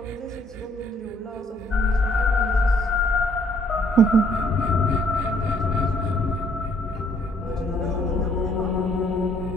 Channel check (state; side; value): normal; both; correlation 0.65